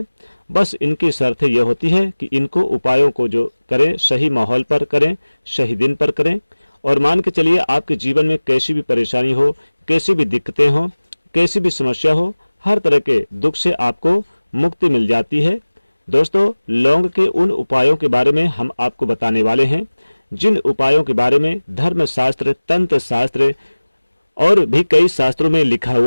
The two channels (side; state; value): both; inverted; correlation -1.00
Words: बस इनकी शर्त यह होती है कि इनको उपायों को जो करें सही माहौल पर करें, सही दिन पर करें। और मान के चलिए आपके जीवन में कैसी भी परेशानी हो, कैसी भी दिक्कतें हो, कैसी भी समस्या हो, हर तरह के दुख से आपको मुक्ति मिल जाती है। दोस्तों, लौंग के उन उपायों के बारे में हम आपको बताने वाले हैं जिन उपायों के बारे में धर्मशास्त्र, तंत्र शास्त्र और भी कई शास्त्रों में लिखा